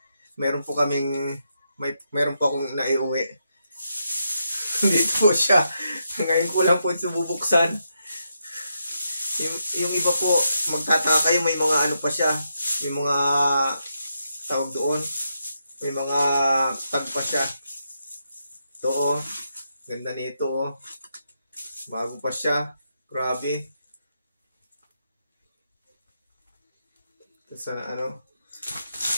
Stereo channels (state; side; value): inverted; both; correlation -0.82